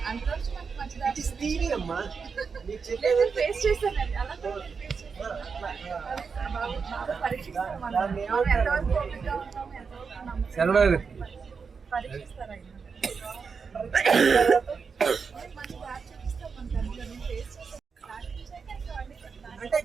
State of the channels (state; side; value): quieter; left; 5.5 dB